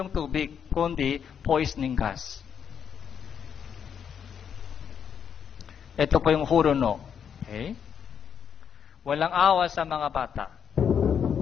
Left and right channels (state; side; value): quieter; right; 7.7 dB